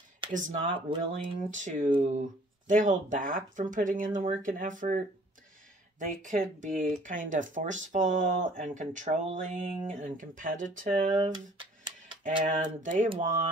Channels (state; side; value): normal; both; correlation 0.55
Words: is not willing to, they hold back from putting in the work and effort. They could be kind of forceful and controlling and competitive, and they